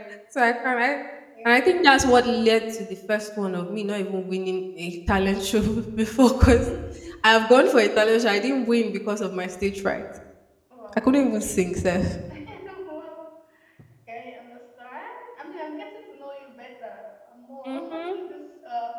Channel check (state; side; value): identical; both; correlation 1.00